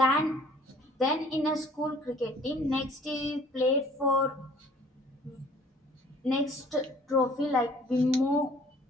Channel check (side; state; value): both; normal; correlation 0.54